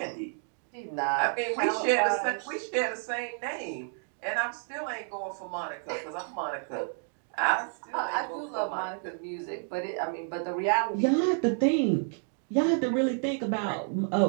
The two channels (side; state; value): left; silent; 58 dB below the other